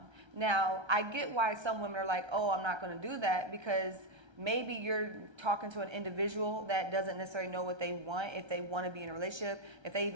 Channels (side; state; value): left; late; 1.3 ms